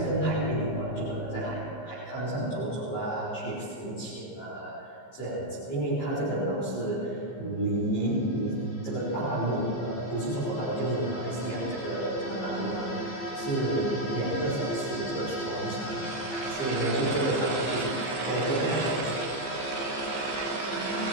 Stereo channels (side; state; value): right; late; 15 ms